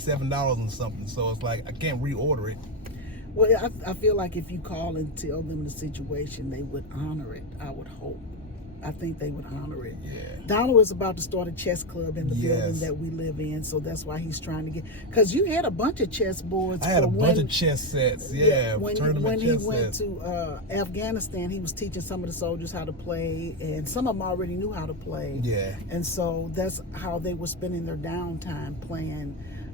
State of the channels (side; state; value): both; normal; correlation 0.09